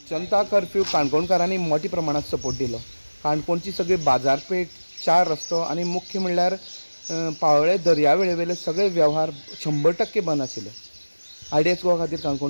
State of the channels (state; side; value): inverted; both; correlation -1.00